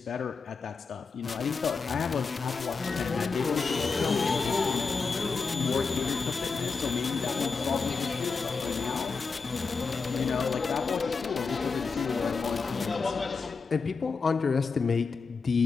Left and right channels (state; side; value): quieter; right; 4.8 dB